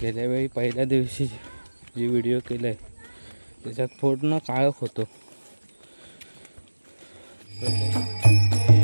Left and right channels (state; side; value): inverted; both; correlation -1.00